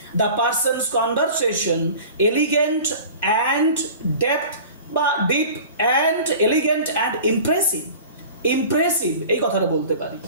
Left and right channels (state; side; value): inverted; both; correlation -0.40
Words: the person's conversation elegant and depth বা deep and elegant and impressive. Impressive এই কথাটা বলতে পারি।